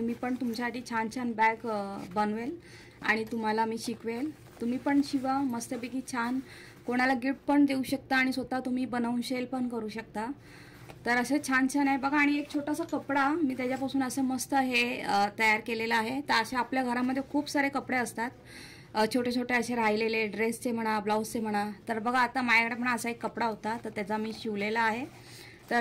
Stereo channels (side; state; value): both; identical; correlation 1.00